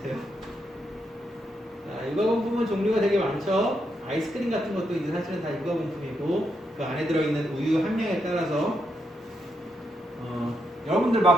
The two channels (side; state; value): both; normal; correlation 0.81